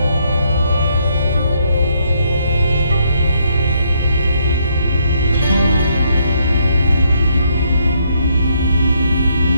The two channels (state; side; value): inverted; both; correlation -0.73